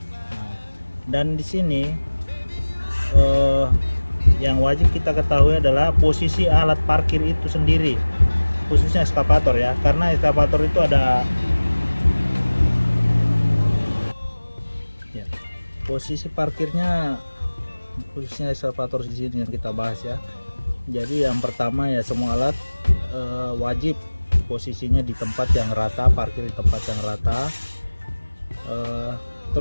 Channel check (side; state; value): both; inverted; correlation -1.00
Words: Nah, dan di sini yang wajib kita ketahui adalah posisi alat parkir itu sendiri, khususnya ekskavator ya, karena ekskavator itu ada ya, posisi parkirnya, khususnya ekskavator di sini yang kita bahas ya. Jadi yang pertama ya, semua alat wajib posisinya di tempat yang rata, parkir di tempat yang rata.